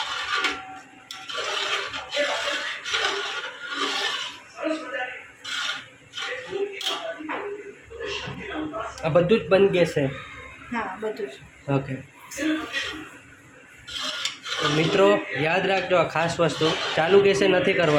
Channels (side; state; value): both; identical; correlation 1.00